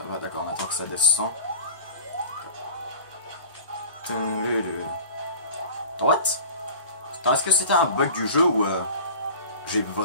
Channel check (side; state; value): both; inverted; correlation -0.38